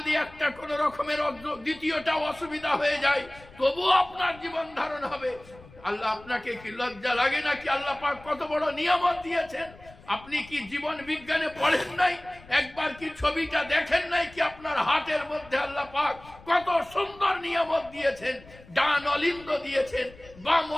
একটা কোন রকমের দ্বিতীয়টা অসুবিধা হয়ে যায় তবুও আপনার জীবন ধারণ হবে। আল্লাহ আপনাকে কি লজ্জা লাগে না? কি আল্লাহ পাক কত বড় নিয়ামত দিয়েছেন। আপনি কি জীবন বিজ্ঞানে পড়েন নাই? একবার কি ছবিটা দেখেন নাই? কি আপনার হাতের মধ্যে আল্লাহ পাক কত সুন্দর নিয়ামত দিয়েছেন। ডান অলিন্দ দিয়েছেন, বাম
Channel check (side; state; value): left; noise; rumble, 22 dB below the sound